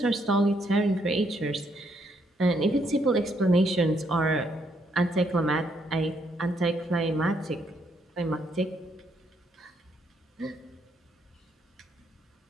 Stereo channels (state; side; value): normal; both; correlation 0.73